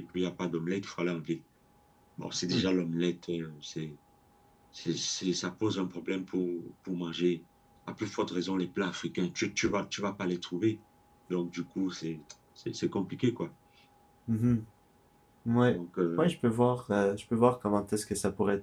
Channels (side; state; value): both; identical; correlation 1.00